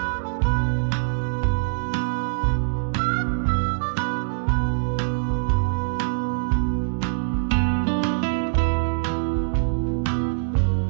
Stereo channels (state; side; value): silent; left; digital silence